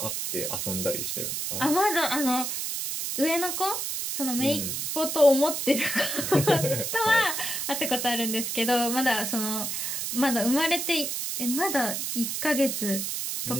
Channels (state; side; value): noise; right; hiss, 2 dB below the sound